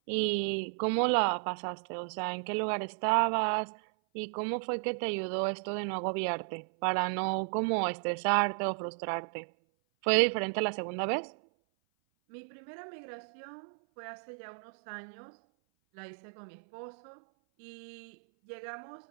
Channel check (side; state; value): left; silent; 56 dB below the other